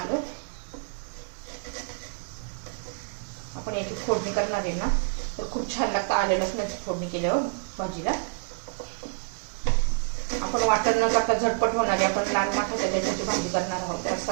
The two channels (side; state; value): left; silent; 60 dB below the other